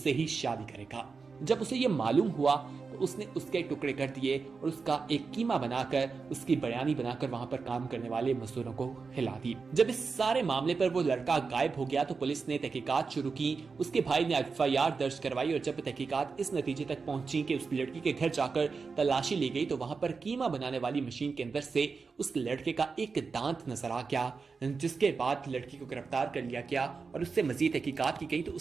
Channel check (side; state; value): left; quieter; 4.8 dB